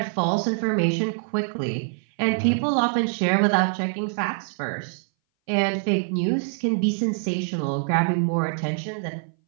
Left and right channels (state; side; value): silent; left; 59 dB below the other